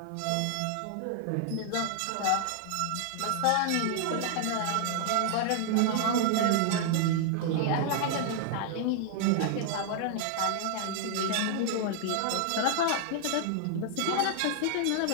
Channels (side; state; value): both; different; correlation 0.00